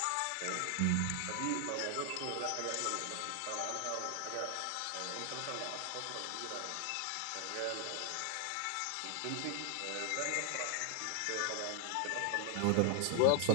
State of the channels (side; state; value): both; different; correlation 0.00